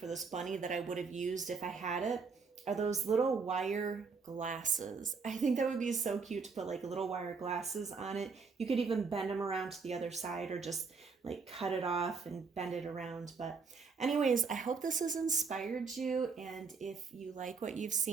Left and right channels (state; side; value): quieter; left; 5.0 dB